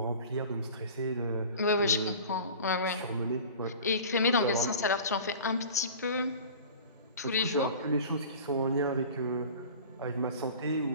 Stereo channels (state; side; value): inverted; both; correlation -0.40